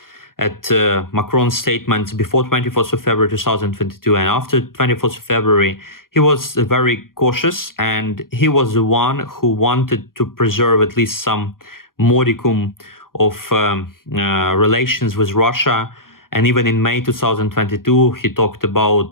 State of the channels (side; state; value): right; late; 0.91 ms